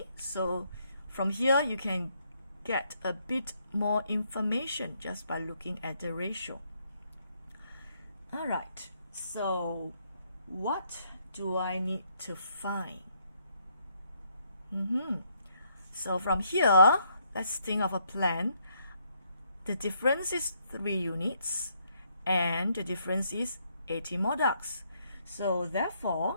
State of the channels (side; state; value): both; inverted; correlation -0.72